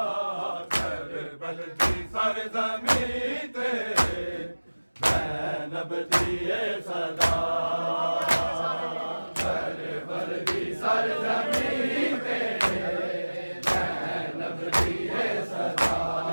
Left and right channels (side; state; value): both; inverted; correlation -1.00